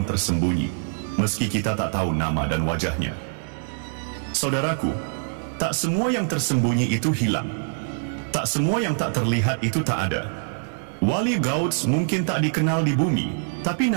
tersembunyi, meski kita tak tahu nama dan wajahnya. Saudaraku, tak semua yang tersembunyi itu hilang. Tak semua yang tak terlihat itu tak ada. Wali Gauds mungkin tak dikenal di bumi, tapi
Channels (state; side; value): silent; left; digital silence